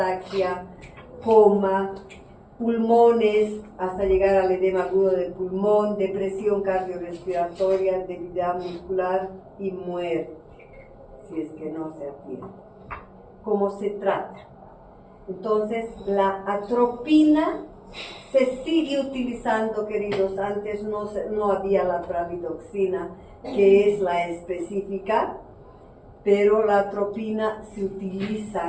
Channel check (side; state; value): both; identical; correlation 1.00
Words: coma, pulmones, hasta llegar al edema agudo del pulmón, depresión cardiorrespiratoria, debilidad muscular y muerte, si es que no se atiende. ¿Cómo se trata? Entonces, la atropina se sigue utilizando, queridos. Antes no había la pralidoxina, que es la específica, pero la atropina se